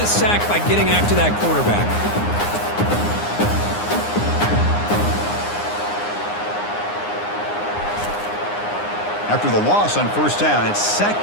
a sack by getting after that quarterback. After the loss on first down, it's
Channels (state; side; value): late; right; 9.7 ms